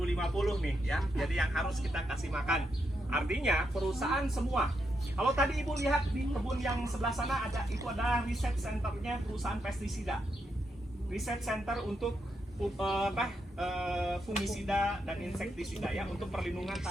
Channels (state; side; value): normal; both; correlation 0.82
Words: nih ya. Jadi yang harus kita kasih makan. Artinya perusahaan semua. Kalau tadi Ibu lihat di kebun yang sebelah sana itu adalah riset centernya perusahaan pestisida. Riset center untuk fungisida dan insektisida ya, untuk perlindungan